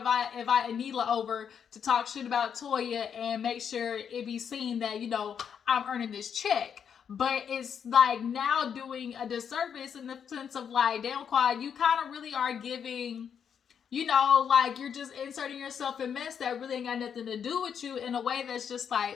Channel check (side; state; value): right; quieter; 7.7 dB